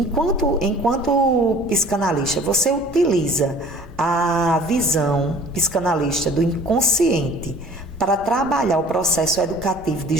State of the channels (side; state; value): both; normal; correlation 0.49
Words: psicanalista, você utiliza a visão psicanalista do inconsciente para trabalhar o processo educativo de